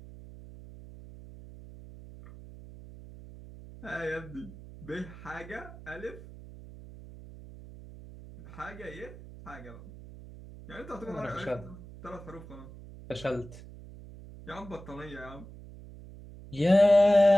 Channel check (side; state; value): right; noise; hum, 16 dB below the sound